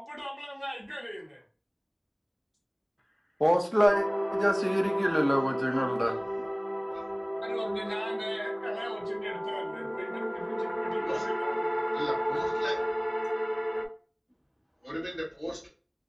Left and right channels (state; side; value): identical; both; correlation 1.00